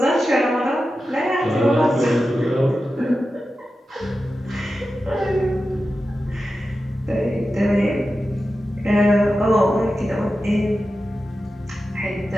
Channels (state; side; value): normal; both; correlation 0.92